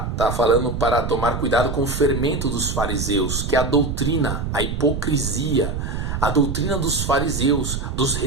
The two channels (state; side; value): noise; right; rumble, 3 dB below the sound